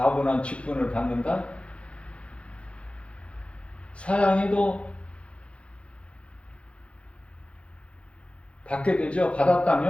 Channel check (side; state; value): right; late; 0.061 ms